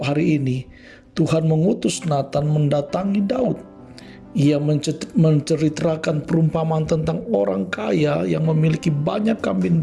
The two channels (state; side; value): identical; both; correlation 1.00